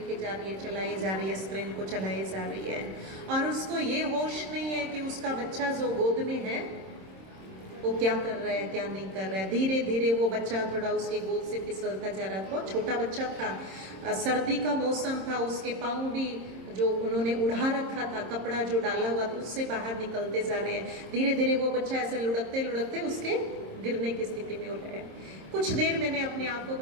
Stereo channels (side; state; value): left; late; 26 ms